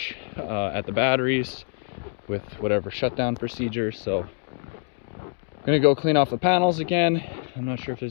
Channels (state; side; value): silent; right; 56 dB below the other